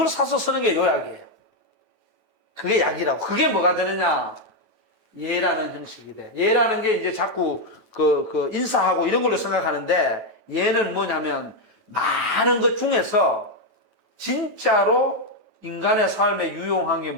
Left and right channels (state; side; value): late; right; 9.1 ms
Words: 사서 쓰는 게 요약이에요. 그게 약이라고. 그게 뭐가 되느냐? 예라는 형식이 돼. 예라는 게 이제 자꾸 인사하고 이런 걸로 생각하는데 예는 뭐냐면 많은 것 중에서 진짜로 인간의 삶에 유용한 게